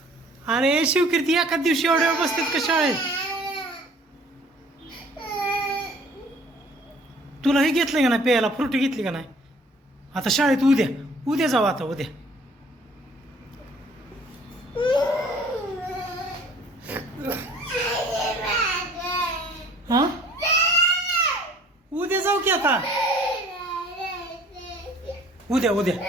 अरे शिवकीर्ती एका दिवशी एवढ्या वेळ बसतात का शाळेत? तुला हे घेतलं का नाही प्यायला? फ्रुटी घेतली का नाही? आता शाळेत उद्या उद्या जाऊ, आता उद्या. हा उद्या जाऊ की आता. उद्या उद्या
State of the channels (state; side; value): normal; both; correlation 0.54